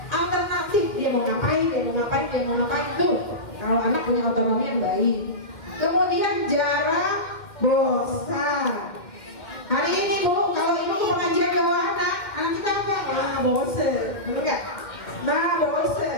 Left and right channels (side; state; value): right; late; 2.1 ms